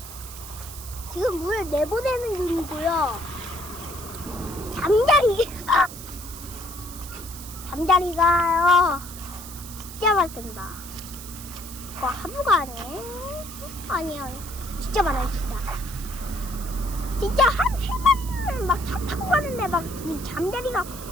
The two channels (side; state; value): right; noise; hiss, 13 dB below the sound